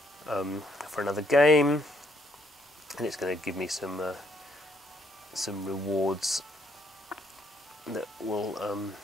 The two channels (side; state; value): both; normal; correlation 0.70